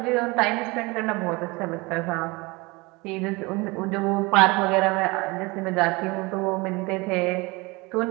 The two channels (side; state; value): left; quieter; 24.8 dB